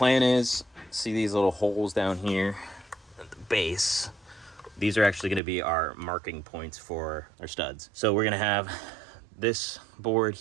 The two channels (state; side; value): drops out; left; at 5.4 s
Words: is, see these little holes down here at the base? These are actually gonna be our marking points for our studs. So we're gonna have this board